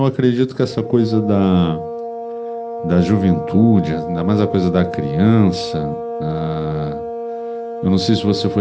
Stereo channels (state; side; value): identical; both; correlation 1.00